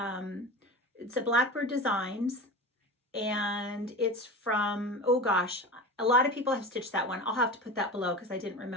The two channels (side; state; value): both; normal; correlation 0.30